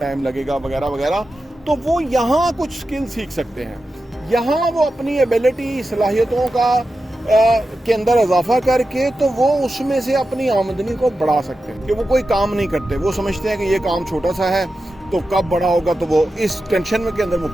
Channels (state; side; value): normal; both; correlation 0.91